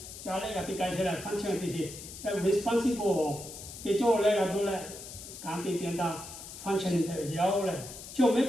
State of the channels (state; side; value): noise; left; hiss, 12 dB below the sound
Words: 잘해 같이 가셔라 function 되지 responsible 뒤쪽을 내가 돌래 감기 된다 function 되어요. 저